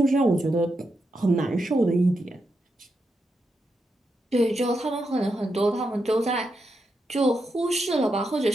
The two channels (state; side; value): normal; both; correlation 0.85